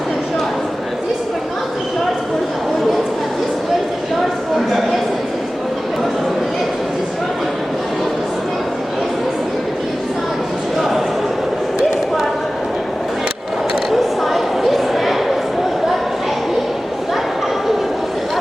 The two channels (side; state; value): both; normal; correlation 0.96